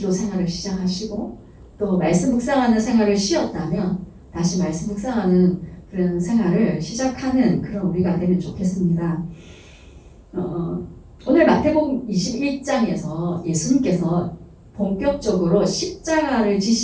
생활을 시작하시고 또 말씀 묵상하는 생활을 쉬었다면 다시 말씀 묵상하는 그런 생활을 시작하는 그런 우리가 되면 좋겠습니다. 오늘 마태복음 21장에서 예수님께서 본격적으로 십자가를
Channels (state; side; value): identical; both; correlation 1.00